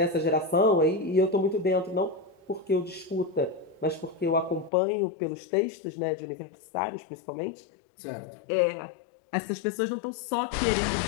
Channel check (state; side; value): drops out; right; at 4.7 s